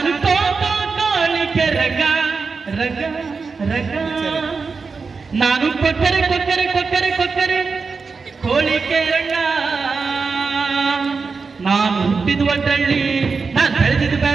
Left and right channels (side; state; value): left; quieter; 4.7 dB